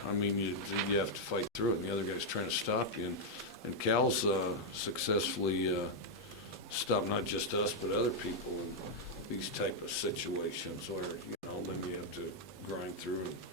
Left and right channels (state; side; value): normal; both; correlation -0.02